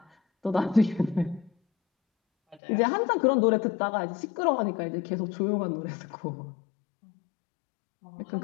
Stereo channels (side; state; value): right; drops out; at 2.6 s